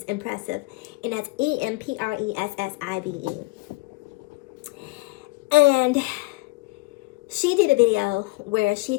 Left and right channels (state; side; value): quieter; right; 23.5 dB